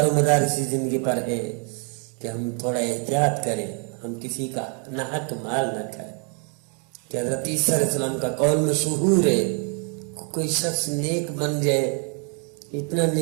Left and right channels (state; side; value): quieter; left; 38.6 dB